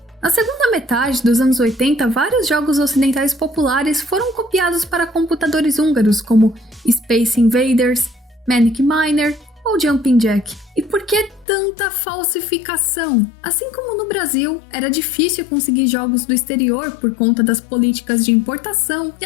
Na segunda metade dos anos 80, vários jogos ocidentais populares foram copiados para computadores húngaros, como Space Invaders, Manic Miner ou Jumping Jack. E por que tanta falsificação? Assim como no Brasil, era difícil conseguir jogos do exterior por conta das políticas de importação, e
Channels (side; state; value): right; drops out; at 11.5 s